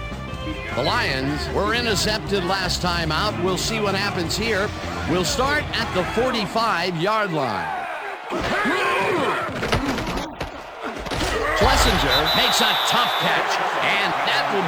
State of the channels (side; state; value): both; identical; correlation 1.00